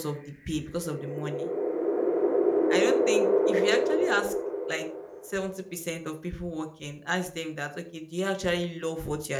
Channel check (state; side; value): identical; both; correlation 1.00